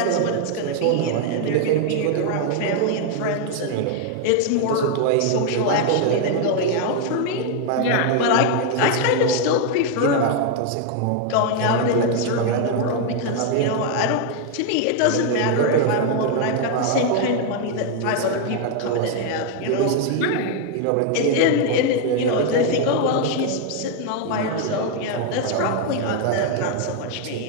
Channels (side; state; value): both; different; correlation 0.01